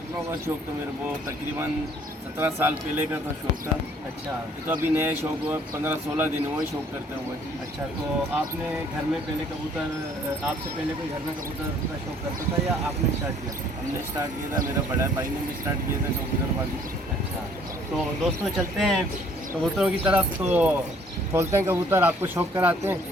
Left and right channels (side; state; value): both; normal; correlation 0.59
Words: का शौक़ तो मेरे को तकरीबन 17 साल पहले का था शौक़ था। अच्छा। तो अभी नए शौक़ हुआ 15-16 दिन हुए शौक़ करते हुए। अच्छा, तो आपने घर में पहले कबूतर, आपसे पहले कोई घर में कबूतर का शौक़ करता था या आपने स्टार्ट किया था? हमने स्टार्ट किया था, मेरा बड़ा भाई ने भी स्टार्ट किया था कबूतरबाजी। अच्छा, तो दोस्तों चलते हैं कबूतरों की तरफ, तो खोलते हैं कबूतर, आपको शौक़ कराते हैं।